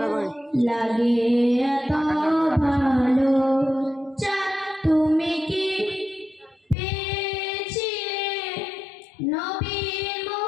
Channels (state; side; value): drops out; right; at 6.8 s